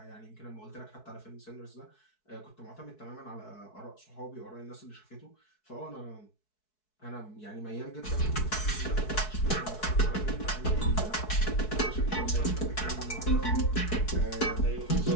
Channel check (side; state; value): right; late; 4.6 ms